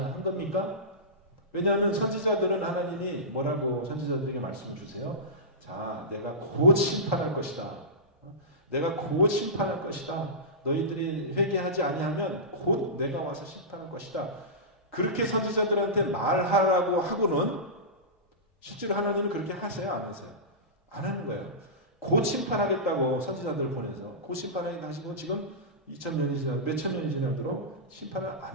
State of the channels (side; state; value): both; normal; correlation -0.17